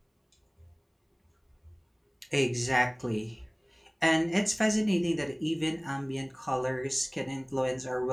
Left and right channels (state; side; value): identical; both; correlation 1.00